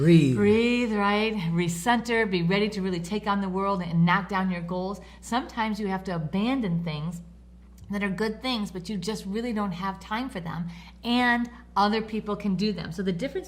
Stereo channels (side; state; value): both; identical; correlation 1.00